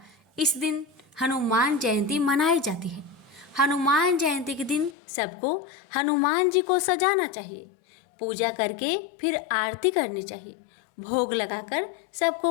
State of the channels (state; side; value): drops out; right; at 5.0 s